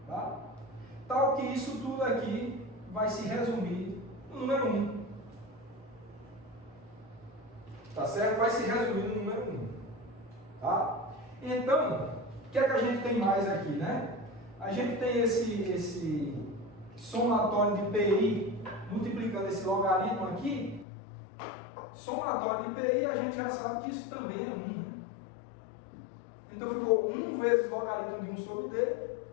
tá? Tal que isso tudo aqui vai se resumir no número 1. Tá certo? Vai se resumir no número 1. Tá? Então, o que é que a gente tem mais aqui, né? A gente tem esse somatório de PI multiplicando esse logaritmo aqui. Somatório de PI, a gente já sabe que isso também é 1. Né? Então, ficou 1 vezes logaritmo de 1 sobre D,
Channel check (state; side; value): drops out; right; at 20.9 s